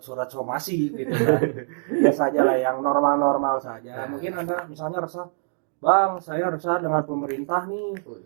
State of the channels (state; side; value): silent; left; digital silence